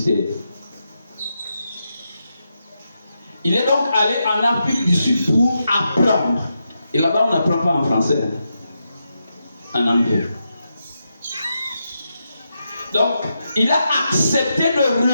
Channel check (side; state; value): both; inverted; correlation -0.85